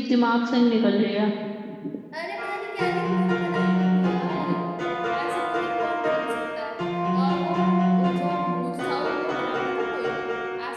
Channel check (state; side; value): identical; both; correlation 1.00